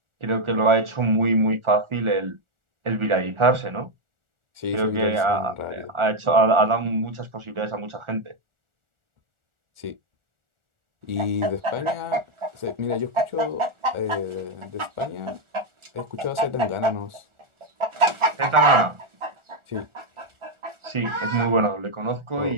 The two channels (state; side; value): late; left; 1.4 ms